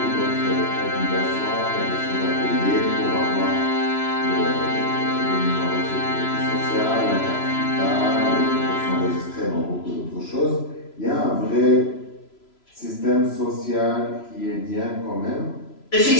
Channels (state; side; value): late; right; 3.0 ms